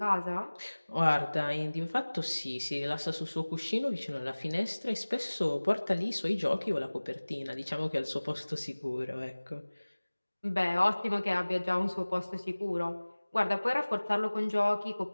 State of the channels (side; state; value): both; inverted; correlation -1.00